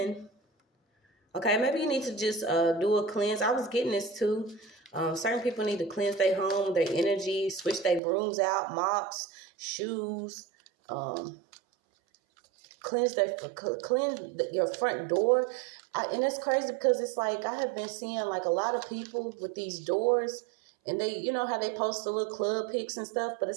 Okay, maybe you need to just do a cleanse. I was getting this too. Certain people need to cleanse their home, their energy, switch their brooms out, mops, shoes, cleanse your front door. And it's crazy because it's like I have been seeing like a lot of people with these doors, and they, you know how they post the little club pics and stuff, but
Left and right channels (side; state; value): left; drops out; at 8.0 s